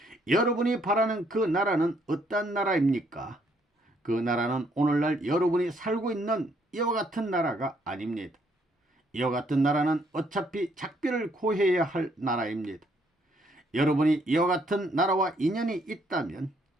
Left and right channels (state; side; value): normal; both; correlation 0.69